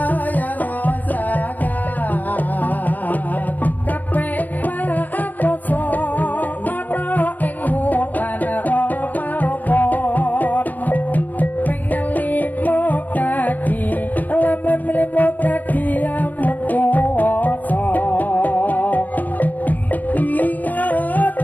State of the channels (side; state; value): right; late; 0.083 ms